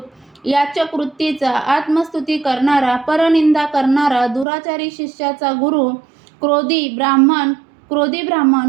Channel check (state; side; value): drops out; left; at 4.5 s